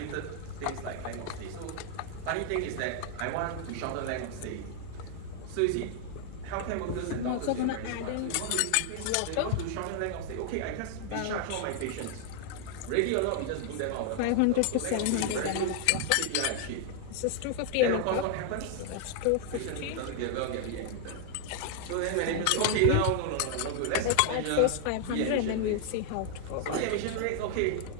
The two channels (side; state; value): both; different; correlation 0.00